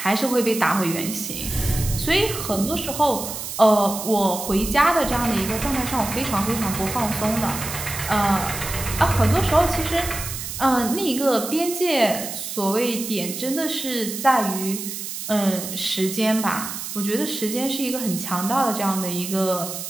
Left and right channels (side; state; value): right; noise; hiss, 7 dB below the sound